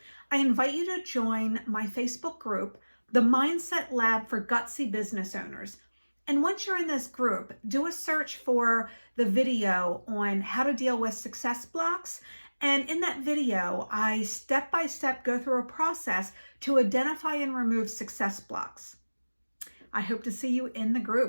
I invite you to join my Facebook group, the Mindset Lab for Gutsy Business Owners. And once you're in this group, do a search for the video on how to deal with success blocks And in that video, I step by step go through a process to identify and remove success blocks. I hope to see you in the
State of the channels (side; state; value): both; inverted; correlation -1.00